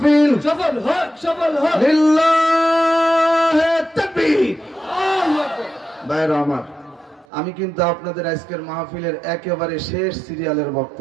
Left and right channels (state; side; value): drops out; left; at 7.2 s